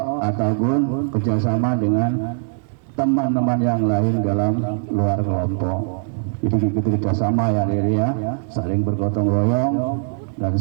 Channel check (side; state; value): left; silent; 58 dB below the other